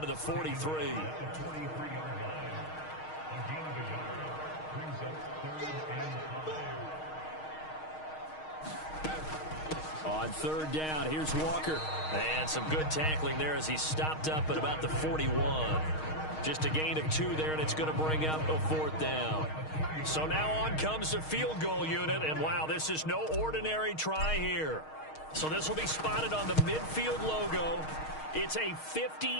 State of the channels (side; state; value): right; late; 6.4 ms